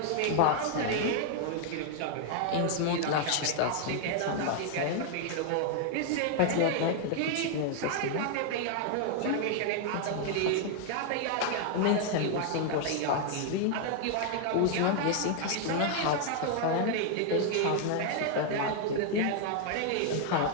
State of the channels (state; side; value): different; both; correlation 0.00